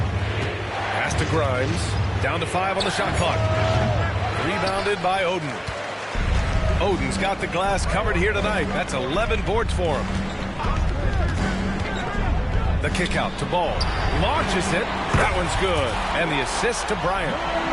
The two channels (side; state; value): both; identical; correlation 1.00